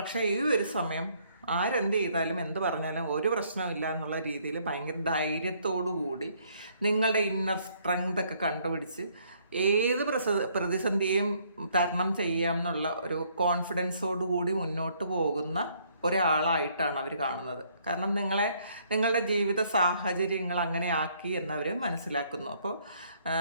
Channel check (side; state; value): both; inverted; correlation -0.66